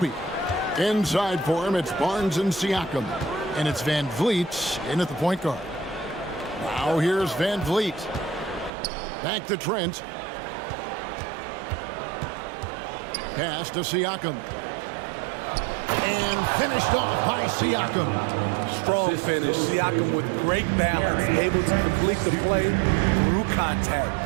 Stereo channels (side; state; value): left; drops out; at 8.7 s